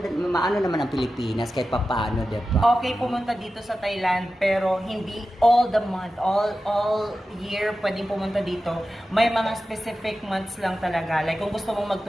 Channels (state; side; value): normal; both; correlation 0.93